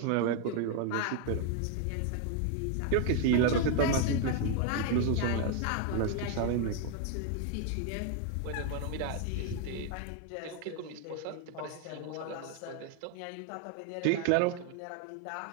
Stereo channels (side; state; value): both; different; correlation 0.01